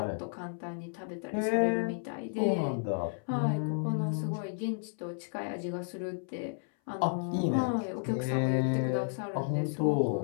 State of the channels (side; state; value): right; silent; 56 dB below the other